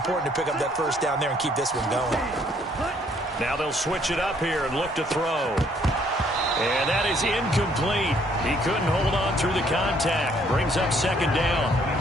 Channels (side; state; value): both; normal; correlation 0.65